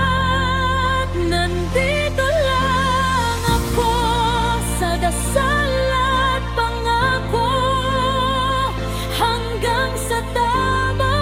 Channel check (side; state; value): both; identical; correlation 1.00